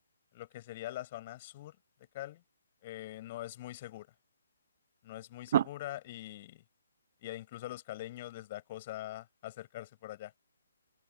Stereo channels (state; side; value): inverted; both; correlation -0.49